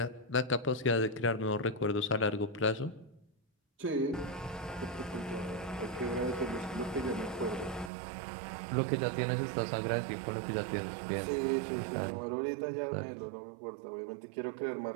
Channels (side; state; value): left; drops out; at 7.9 s